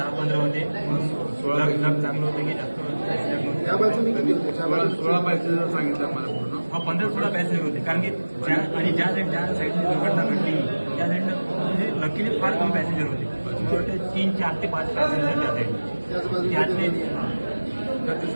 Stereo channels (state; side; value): inverted; both; correlation -1.00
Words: होते. 16 चांगलं होतं की जास्त त्या बाजूने किती होते 16 पॅसेंजर सांगितलं आम्हाला पूर्ण 15-16 पॅसेंजर होते. कारण की ज्या साईडने दुर्घटना घडली त्या साईडनं म्हणजे लकीली फार कमी पॅसेंजर होते. मला वाटतं 3, 4 ते 5 पॅसेंजर त्या साईडने त्यातले त्याचे